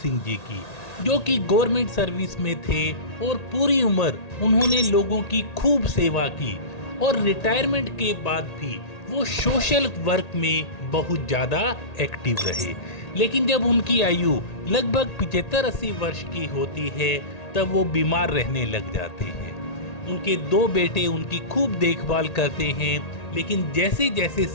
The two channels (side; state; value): right; late; 1.8 ms